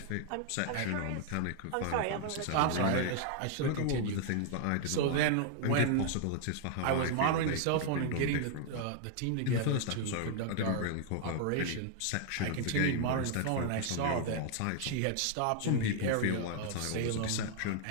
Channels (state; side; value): different; both; correlation 0.00